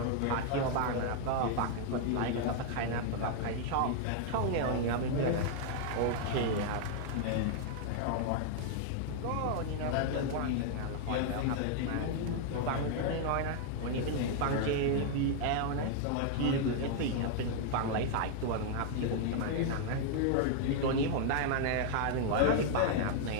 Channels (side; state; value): both; different; correlation 0.00